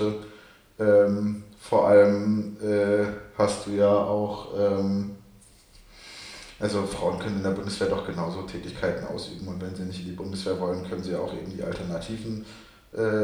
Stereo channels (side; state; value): both; identical; correlation 1.00